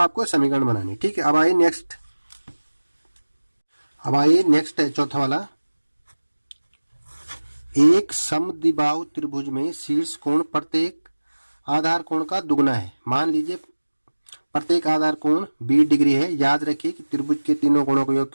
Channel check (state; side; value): inverted; both; correlation -1.00